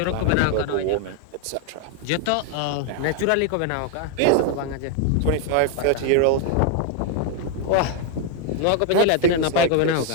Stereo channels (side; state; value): both; different; correlation 0.00